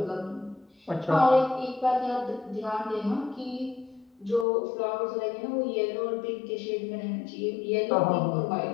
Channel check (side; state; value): right; drops out; at 4.5 s